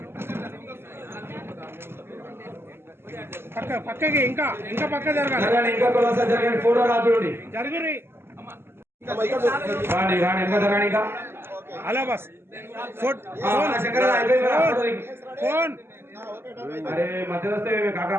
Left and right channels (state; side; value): late; left; 0.12 ms